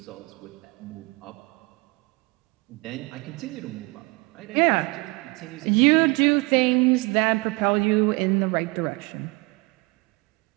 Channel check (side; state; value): left; quieter; 26.7 dB